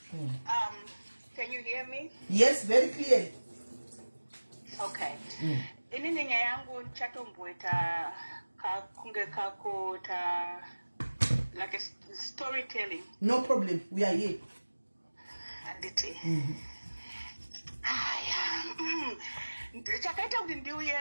Can you hear me? Yes, very clearly. Okay. Inini nyaya yangu nchatomboita kunge kako ta like a storytelling. No problem, we are here. Anditi. Chakaita kuti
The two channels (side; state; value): both; inverted; correlation -1.00